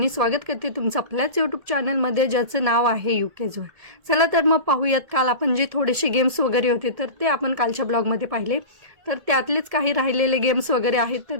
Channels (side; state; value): left; late; 1.7 ms